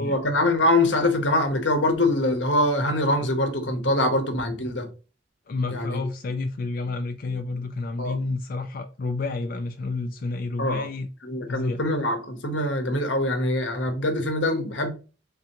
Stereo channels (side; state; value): both; normal; correlation 0.18